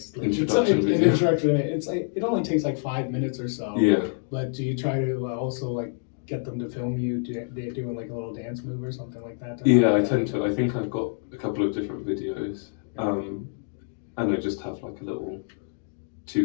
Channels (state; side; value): silent; right; digital silence